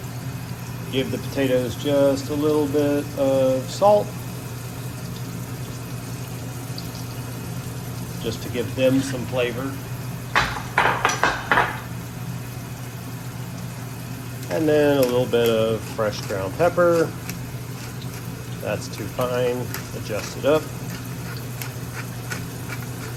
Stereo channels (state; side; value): identical; both; correlation 1.00